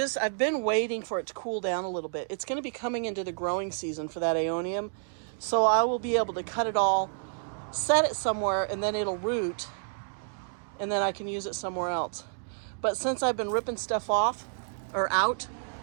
been waiting for it to cool down a little bit. It's going to be coming into the growing season for that aeonium. So I will be able to cut it all, set it somewhere, and then it'll root, and then I can use it somewhere else. But since I've been ripping stuff off, or out,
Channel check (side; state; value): left; silent; digital silence